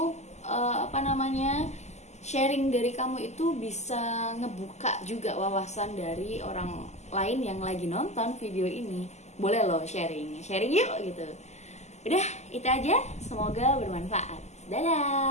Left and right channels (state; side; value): late; right; 0.33 ms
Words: sharing dari kamu itu bisa ngebuka juga wawasan dari orang lain yang lagi nonton video ini. Boleh loh sharing yuk gitu. Udah, itu aja, semoga bermanfaat.